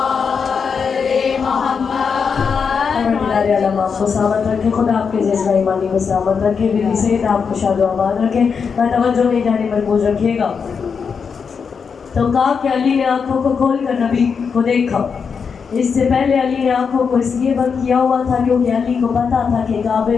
आपको सामत रखे, खुदा आपके जज्बा ईमानी को सामत रखे, बीवी सहित आपको शादो आबाद रखे, मैं तवज्जो नहीं जाने मजबूर रखिएगा। तो कहा कि अली ने आंखों को खोल कर नबी को देखा। इससे पहले अली ने आंखों को इसलिए बंद किया हुआ था क्योंकि अली को पता था कि काबे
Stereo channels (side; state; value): right; quieter; 6.0 dB